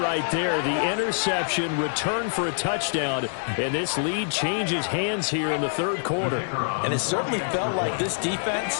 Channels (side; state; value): right; silent; digital silence